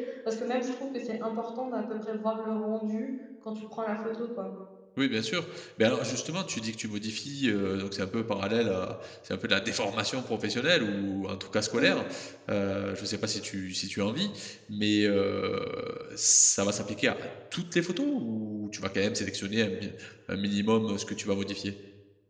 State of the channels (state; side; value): identical; both; correlation 1.00